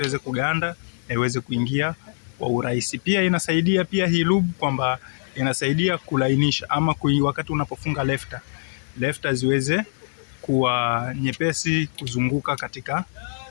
kuganda na iweze kuingia kwa urahisi. Pia inasaidia pia hii lubu kwamba inasaidia kulainisha, ama wakati unapofunga lefta ziweze kuwa nyepesi kuzunguka katika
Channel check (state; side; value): silent; right; digital silence